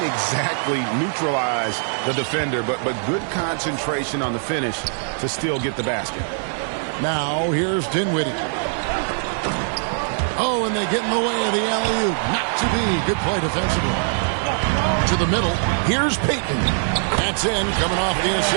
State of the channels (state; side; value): silent; left; 62 dB below the other